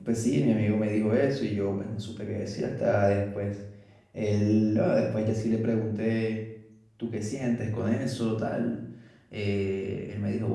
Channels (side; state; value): both; identical; correlation 1.00